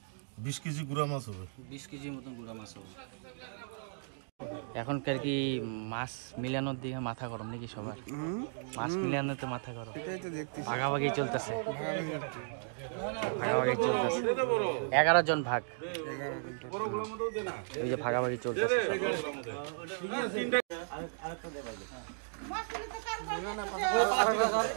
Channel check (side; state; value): left; silent; digital silence